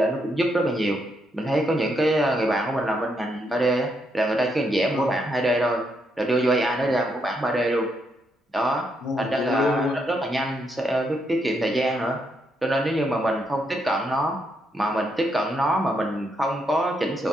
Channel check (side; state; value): both; normal; correlation 0.77